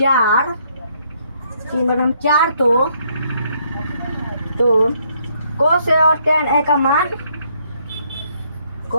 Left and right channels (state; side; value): inverted; both; correlation -0.70